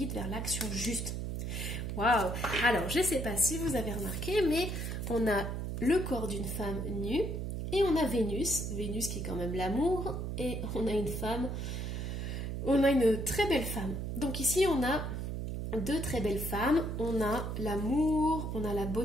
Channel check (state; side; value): noise; right; hum, 3 dB below the sound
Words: vers l'action juste. Waouh! Alors, je ne sais pas si vous avez remarqué, mais on a le corps d'une femme nue et on a Vénus qui est quand même l'amour, et on a une femme, on a une très belle femme. Donc ici, on a deux très belles femmes, on a l'amour, on a la